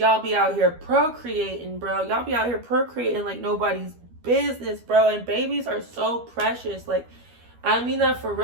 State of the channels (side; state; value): left; late; 12 ms